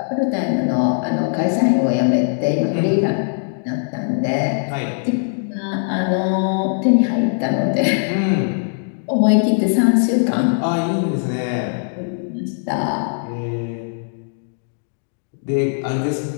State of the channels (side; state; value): right; silent; digital silence